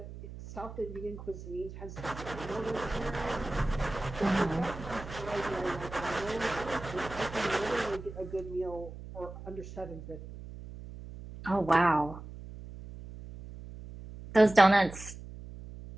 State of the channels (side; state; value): right; noise; hum, 13 dB below the sound